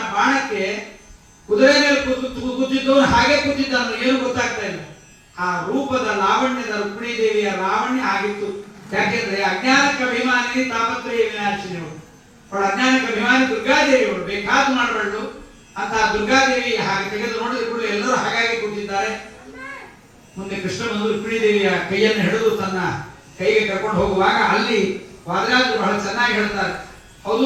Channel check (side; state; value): both; identical; correlation 1.00